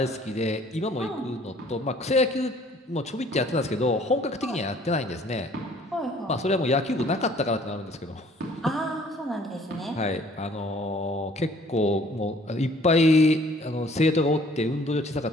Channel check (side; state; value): both; normal; correlation 0.56